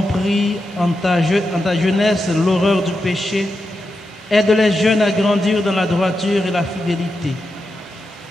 en ta jeunesse l'horreur du péché, aide les jeunes à grandir dans la droiture et la fidélité.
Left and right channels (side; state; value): both; normal; correlation 0.88